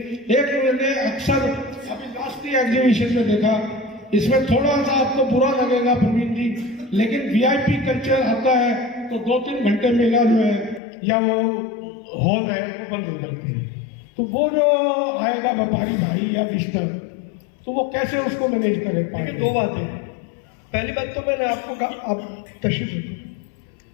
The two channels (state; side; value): drops out; right; at 10.8 s